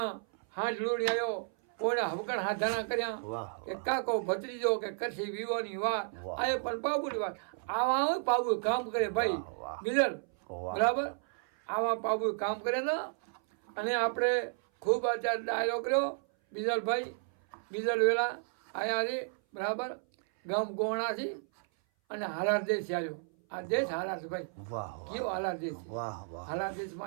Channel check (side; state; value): left; silent; 56 dB below the other